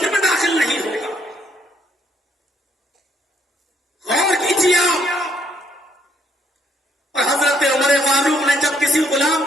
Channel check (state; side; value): normal; both; correlation 0.70